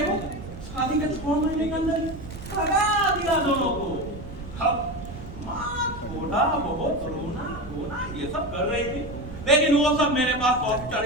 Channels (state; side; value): noise; right; rumble, 12 dB below the sound